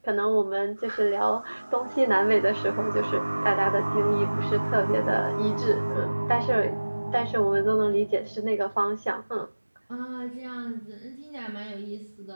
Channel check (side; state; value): both; inverted; correlation -1.00